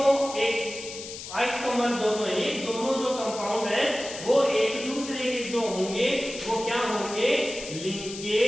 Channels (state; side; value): noise; left; hiss, 11 dB below the sound